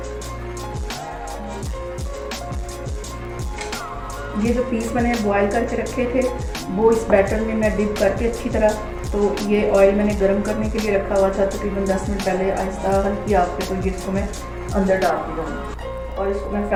ये जो पीस मैंने बॉयल करके रखे थे वो इस बैटर में मैं डिप करके अच्छी तरह, तो ये ऑयल मैंने गर्म करने के लिए रखा हुआ था तकरीबन 10 मिनट पहले। आहिस्ता हल्की आग पे तो ये इसको मैं अंदर डाल दूँगी और इसको मैं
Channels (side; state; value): both; identical; correlation 1.00